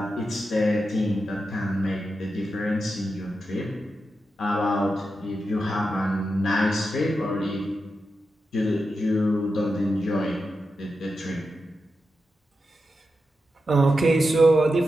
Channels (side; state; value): both; normal; correlation 0.89